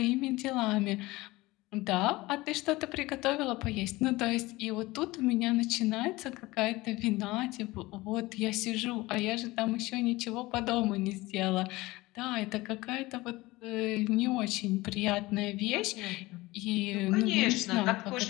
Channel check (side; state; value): right; quieter; 20.3 dB